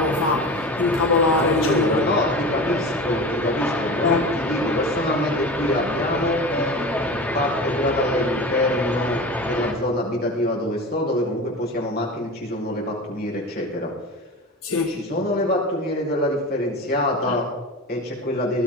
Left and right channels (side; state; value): both; normal; correlation 0.31